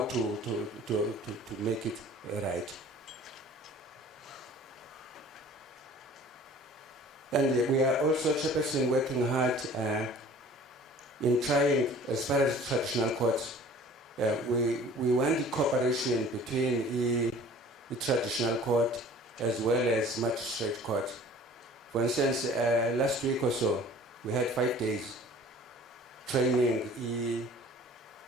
to make it right. And we are also, Chairperson, working hard in trying, as far as traditional courts, we want the cooperation between the traditional court as well as magistrate court. For instance, last week or so, we had 5 days training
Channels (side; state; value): both; normal; correlation 0.48